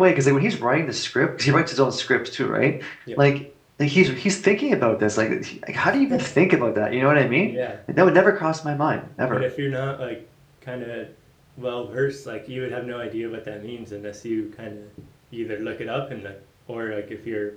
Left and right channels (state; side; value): identical; both; correlation 1.00